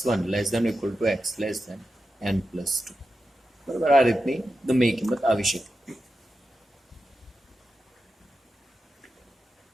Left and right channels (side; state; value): both; normal; correlation 0.90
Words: 1 less than equal to x less than n plus 2. બરાબર, આ રીતની ગમે એ કિંમત આવી શકે.